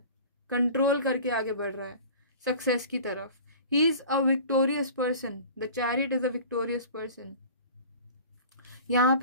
कंट्रोल करके आगे बढ़ रहा है सक्सेस की तरफ. He is a victorious person. The chariot is a victorious person. यहाँ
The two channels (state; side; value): inverted; both; correlation -0.42